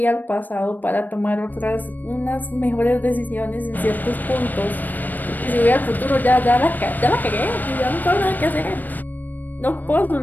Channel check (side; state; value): right; late; 0.087 ms